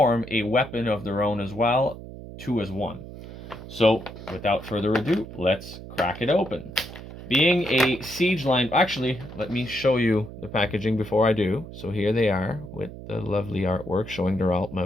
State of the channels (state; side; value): noise; right; hum, 13 dB below the sound